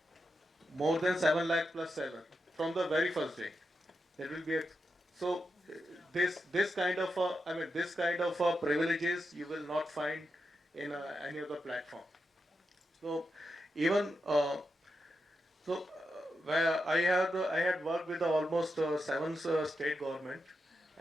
more than 7 lakh plus seller from the very first day. There will be a, so this kind of this kind of privileges you will not find in any other platform. So even where I had worked with almost 7 state government,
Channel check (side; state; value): both; normal; correlation 0.87